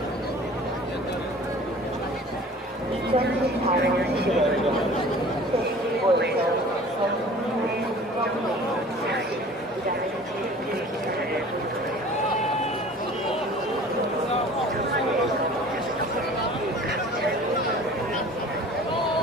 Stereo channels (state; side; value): normal; both; correlation 0.45